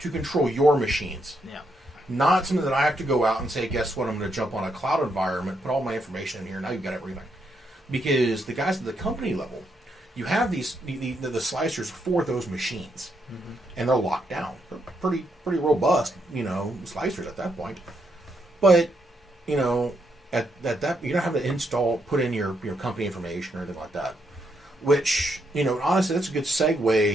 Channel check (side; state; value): both; normal; correlation 0.78